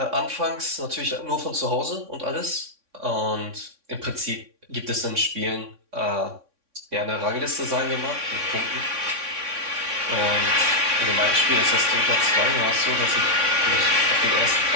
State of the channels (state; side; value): late; left; 3.6 ms